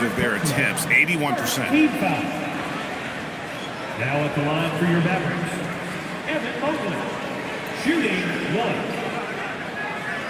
of their attempts. 81%. Now at the line for your Mavericks, Evan Mobley, shooting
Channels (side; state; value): both; identical; correlation 1.00